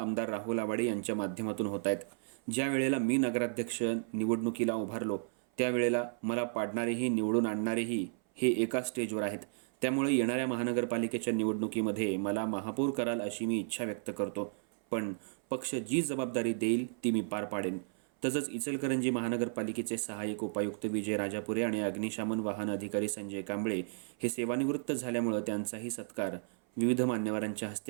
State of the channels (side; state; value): left; silent; 55 dB below the other